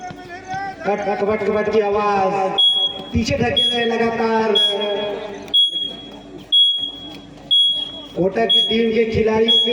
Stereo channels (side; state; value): both; identical; correlation 1.00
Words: कट की आवाज पीछे धकेल रहे लगातार। कोटा की टीम के खिलाड़ियों